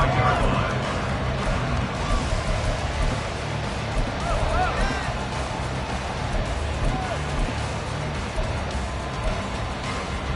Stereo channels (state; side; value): identical; both; correlation 1.00